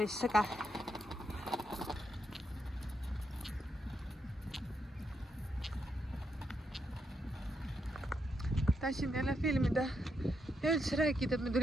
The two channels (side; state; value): both; normal; correlation 0.80